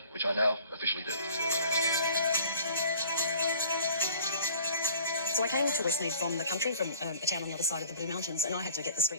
which I now officially do. So I came to Westmead from the country, from a town on the other side of the Blue Mountains, and I had to get the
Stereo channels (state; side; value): inverted; both; correlation -0.51